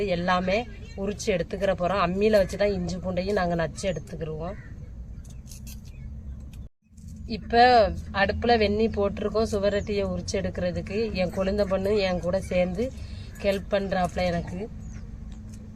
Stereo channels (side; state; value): both; identical; correlation 1.00